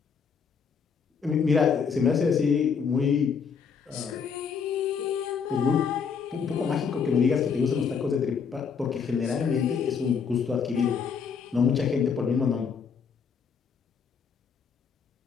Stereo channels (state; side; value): quieter; right; 6.2 dB